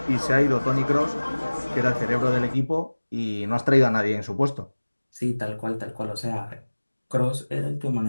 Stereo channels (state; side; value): inverted; both; correlation -1.00